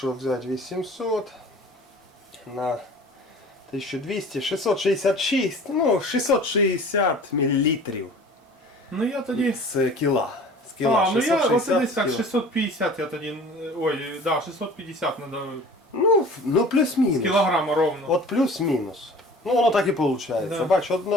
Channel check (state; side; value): normal; both; correlation 0.44